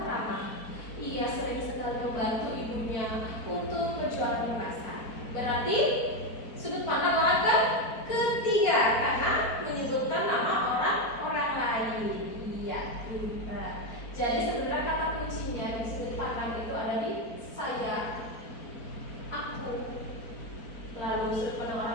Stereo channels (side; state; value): right; late; 4.5 ms